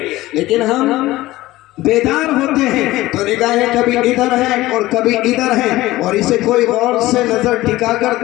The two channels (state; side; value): quieter; right; 17.4 dB